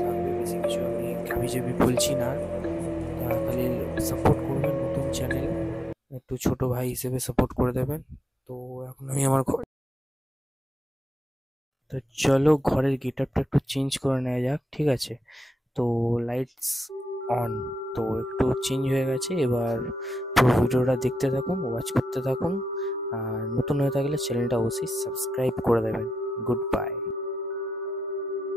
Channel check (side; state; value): both; normal; correlation 0.87